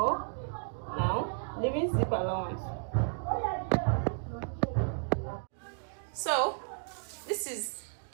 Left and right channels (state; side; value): silent; left; digital silence